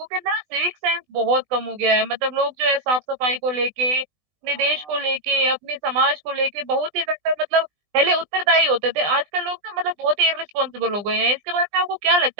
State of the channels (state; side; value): late; left; 20 ms